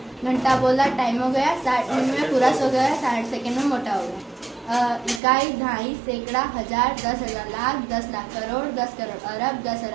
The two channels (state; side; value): drops out; left; at 5.2 s